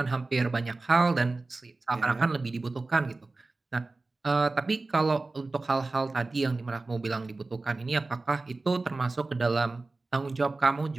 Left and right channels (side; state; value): left; quieter; 3.4 dB